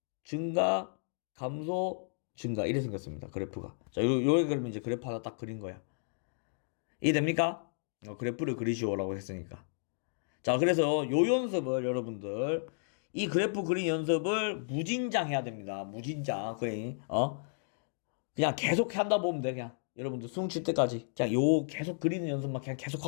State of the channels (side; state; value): right; silent; digital silence